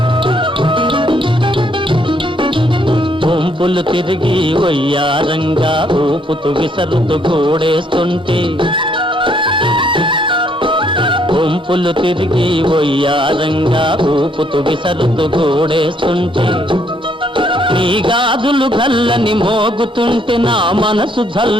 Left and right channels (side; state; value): both; normal; correlation 0.69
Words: వంపులు తిరిగి వయ్యారంగా ఊపుతూ విసరుతూ గోడేస్తుంటే, వంపులు తిరిగి వయ్యారంగా ఊపుతూ విసరుతూ గోడేస్తుంటే, నీ గాజులు గల్లని మోగుతుంటే నా మనసు